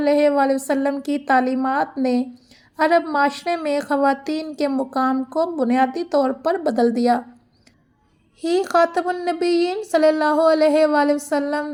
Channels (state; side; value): identical; both; correlation 1.00